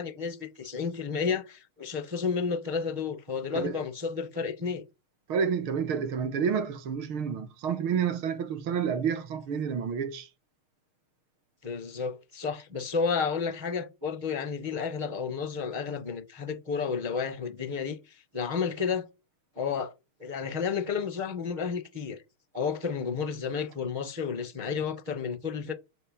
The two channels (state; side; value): late; left; 6.5 ms